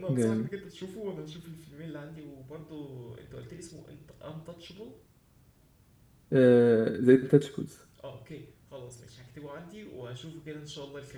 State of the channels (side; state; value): both; identical; correlation 1.00